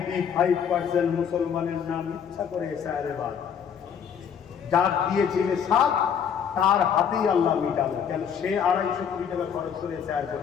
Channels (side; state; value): right; quieter; 7.7 dB